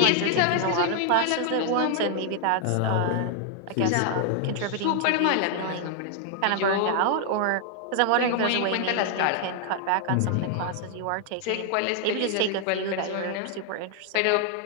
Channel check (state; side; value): different; both; correlation 0.00